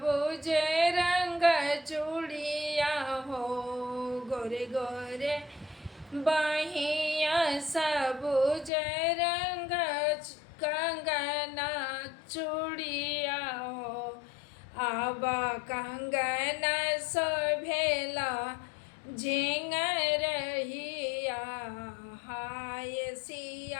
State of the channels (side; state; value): right; drops out; at 8.7 s